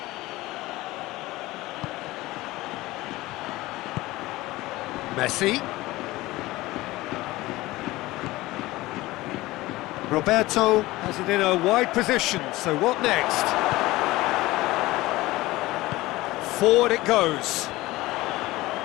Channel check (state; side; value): quieter; right; 18.9 dB